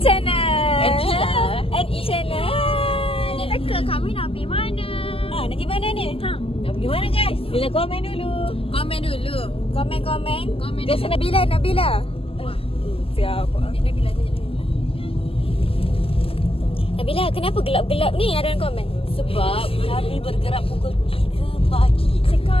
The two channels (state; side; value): late; right; 0.27 ms